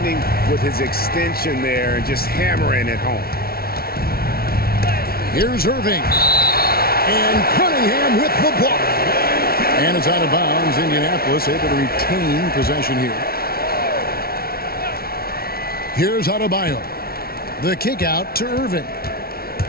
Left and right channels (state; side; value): late; right; 0.44 ms